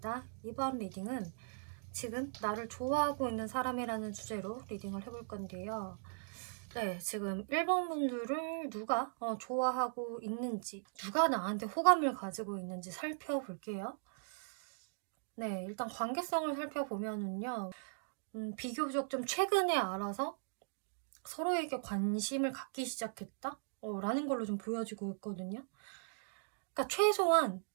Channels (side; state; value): left; silent; digital silence